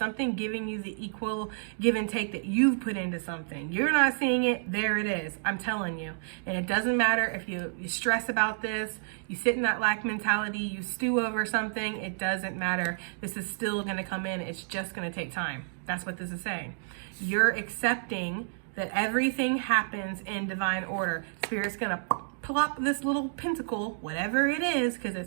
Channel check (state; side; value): silent; left; digital silence